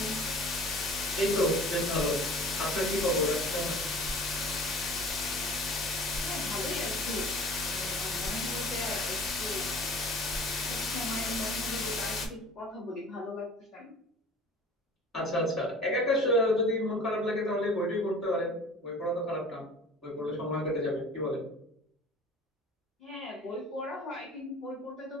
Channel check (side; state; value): both; normal; correlation 0.44